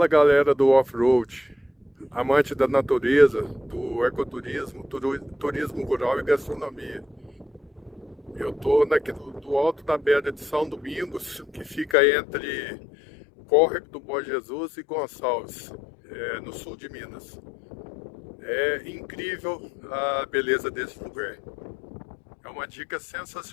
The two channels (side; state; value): right; drops out; at 12.0 s